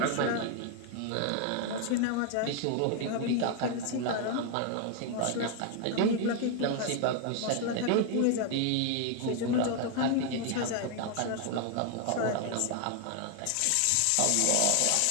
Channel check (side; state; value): both; different; correlation 0.00